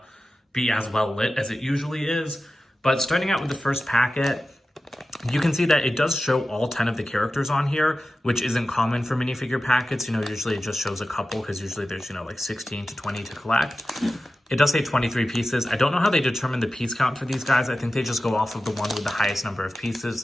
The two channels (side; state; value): both; normal; correlation 0.94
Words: be as well lit as it usually is. But starting out with the first packet, you can see that it does show all 10 of the characters on here, which isn't common for minifigure packets. Usually it just shows a couple because usually there's, like 16 to 20 to collect. It does say 23 pieces. I don't know how they determine the piece count for these guys. I think they just go off of the one with the highest number of pieces.